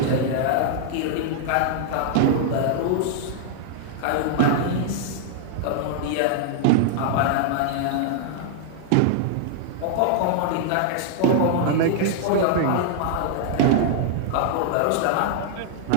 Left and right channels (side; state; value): both; different; correlation -0.01